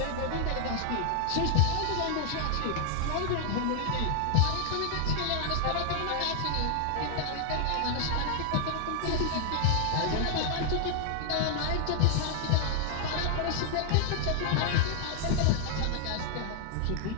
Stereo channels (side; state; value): both; different; correlation 0.00